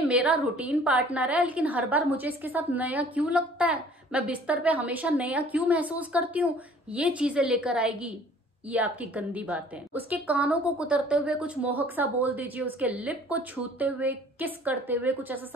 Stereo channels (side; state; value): both; normal; correlation 0.52